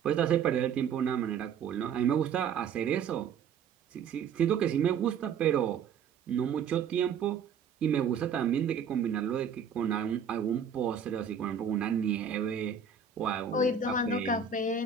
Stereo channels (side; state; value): left; quieter; 6.8 dB